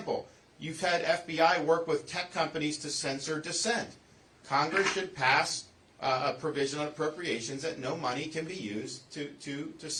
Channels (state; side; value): identical; both; correlation 1.00